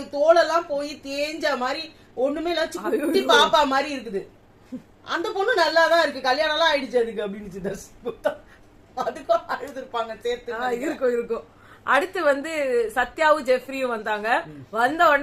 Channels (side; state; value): both; identical; correlation 1.00